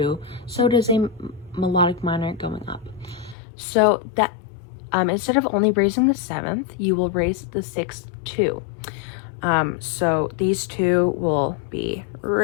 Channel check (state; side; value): drops out; right; at 3.4 s